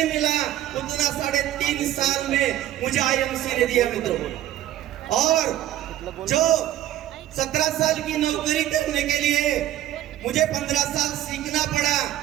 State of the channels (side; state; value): left; quieter; 13.0 dB